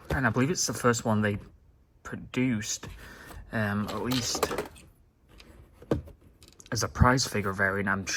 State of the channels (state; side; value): identical; both; correlation 1.00